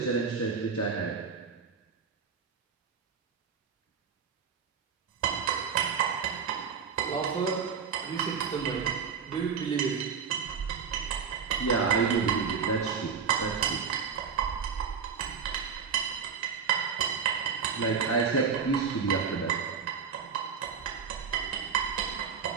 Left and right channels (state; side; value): quieter; left; 6.2 dB